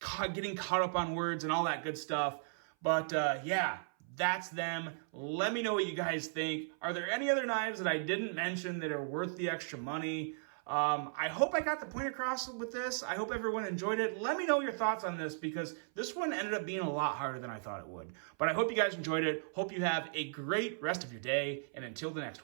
getting caught up on words and all that good stuff. But yeah, that's them. Let me know what you guys think. Are there any other knives that I didn't mention that are worth the extra money? I hope I got the point across with this. I hope everyone enjoyed it. Let me know your thoughts on this, because this one ended up being a lot harder than I thought it would. But I hope you guys enjoyed it. Hope you have a great rest of your day. And until the next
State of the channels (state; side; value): silent; left; 54 dB below the other